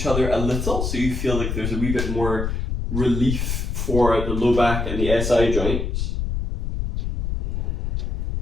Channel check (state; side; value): noise; left; rumble, 2 dB below the sound